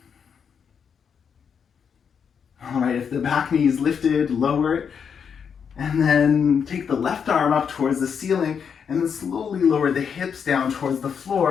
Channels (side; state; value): right; quieter; 6.9 dB